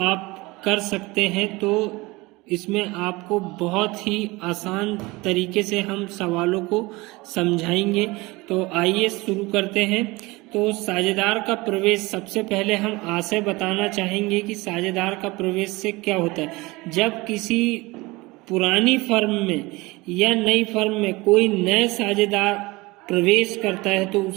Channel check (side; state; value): left; quieter; 22.5 dB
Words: आप कर सकते हैं तो इसमें आपको बहुत ही आसान तरीके से हम सवालों को समझाएंगे। तो आइए शुरू करते हैं। तो साझेदार का प्रवेश, सबसे पहले हम आशय बताना चाहेंगे कि साझेदार का प्रवेश से क्या होता है। जब किसी पुरानी फर्म में या नई फर्म में कोई नए साझेदार प्रवेश करता है तो